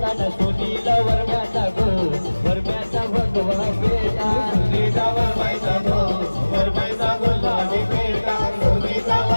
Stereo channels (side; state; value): both; inverted; correlation -1.00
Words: न सुनीला वरम्याचा गो वरम्याचा भगवा बेटा सुनीता वरमाईचा गो वरमाईचा गुलाबी बेटा सुनीता